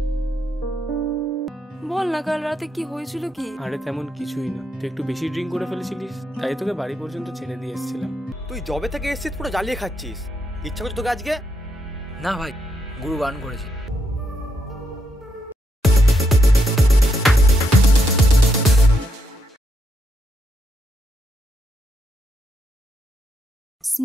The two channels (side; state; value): both; normal; correlation 0.80